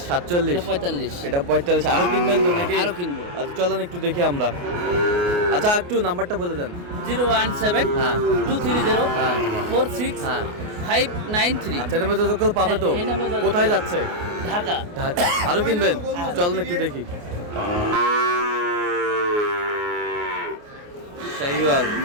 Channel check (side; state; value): left; late; 28 ms